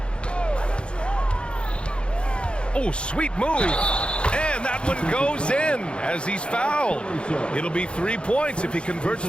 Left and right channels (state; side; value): late; right; 0.056 ms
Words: Oh, sweet move. And that one goes in as he's fouled. It'll be 3 points if he converts